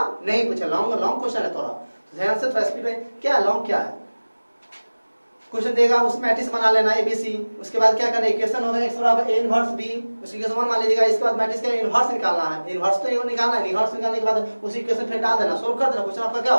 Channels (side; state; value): both; inverted; correlation -1.00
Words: नहीं पूछेगा। लॉन्ग क्वेश्चन है, थोड़ा ध्यान से थोड़ा स्पीड में। क्या लॉन्ग क्या है क्वेश्चन देगा, उस मैट्रिक्स बना लेना ABC, उसके बाद क्या करना इक्वेशन होगा x बराबर a इनवर्स b, उसी इक्वेशन मान लीजिएगा। इसके बाद मैट्रिक्स का इनवर्स निकालना है, इनवर्स तो ये निकालना है, इनवर्स निकालने के बाद उसी इक्वेशन फिर डाल देना, सोल्व कर देना, क्वेश्चन आपका क्या